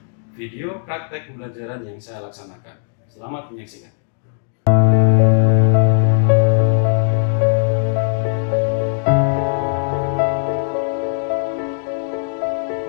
video praktek pembelajaran yang saya laksanakan. Selamat menyaksikan.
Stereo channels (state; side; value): silent; right; digital silence